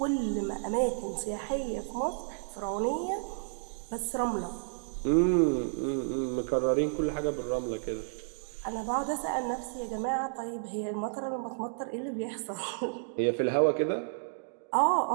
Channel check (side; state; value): left; silent; digital silence